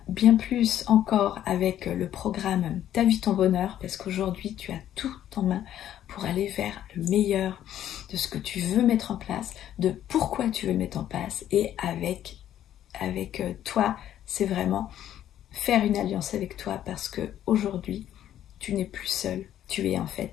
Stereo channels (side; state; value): right; quieter; 11.4 dB